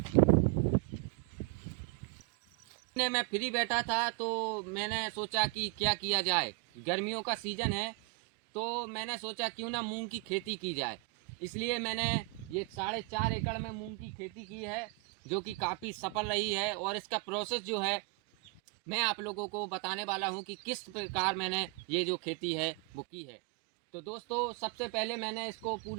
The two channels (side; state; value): left; quieter; 28.5 dB